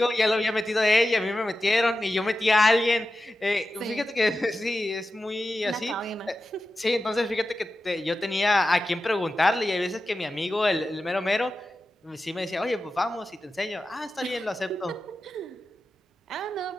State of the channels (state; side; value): normal; both; correlation 0.93